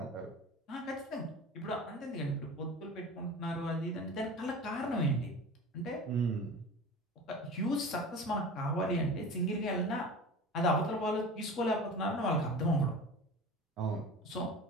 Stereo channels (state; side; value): normal; both; correlation 0.35